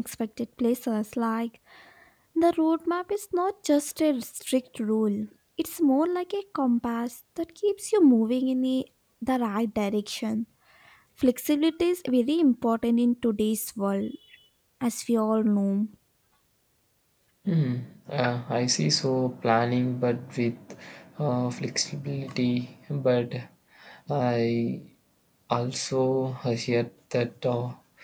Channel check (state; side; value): identical; both; correlation 1.00